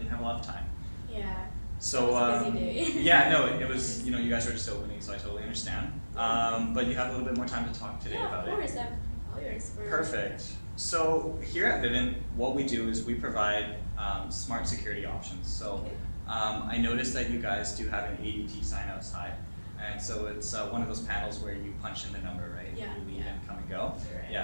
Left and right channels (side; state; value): both; inverted; correlation -1.00